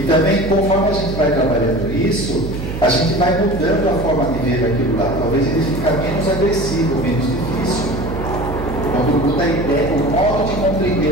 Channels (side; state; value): right; noise; hum, 6 dB below the sound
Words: também, conforme a gente vai trabalhando isso, a gente vai mudando a forma de ver aquilo lá. Talvez ele fique menos agressivo, menos difícil. Quando muda a ideia, o modo de